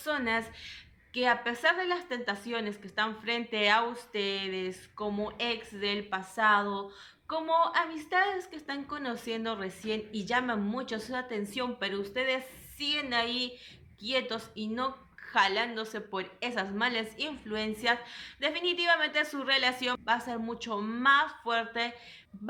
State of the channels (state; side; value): identical; both; correlation 1.00